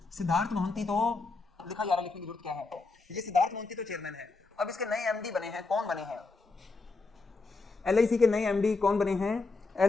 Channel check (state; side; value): quieter; right; 3.8 dB